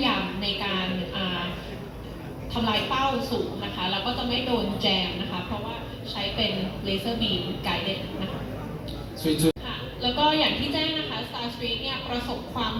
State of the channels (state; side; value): identical; both; correlation 1.00